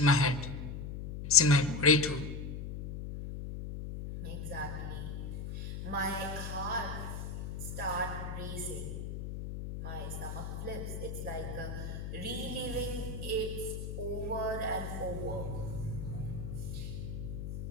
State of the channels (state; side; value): noise; left; hum, 6 dB below the sound